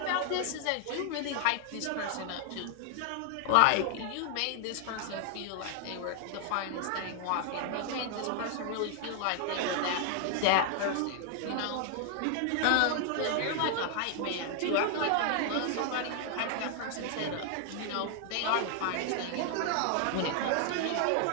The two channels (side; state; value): both; different; correlation 0.00